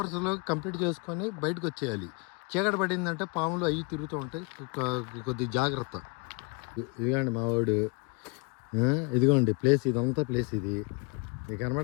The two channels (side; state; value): right; quieter; 31.0 dB